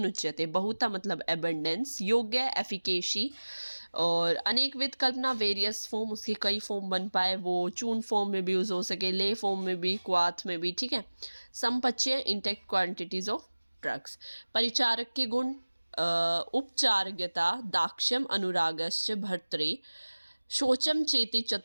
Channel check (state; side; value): inverted; both; correlation -1.00